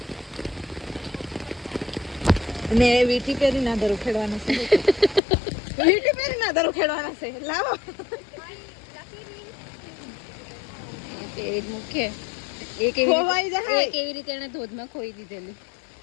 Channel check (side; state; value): right; drops out; at 5.2 s